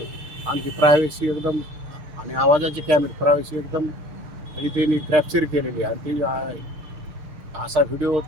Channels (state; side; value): late; left; 6.5 ms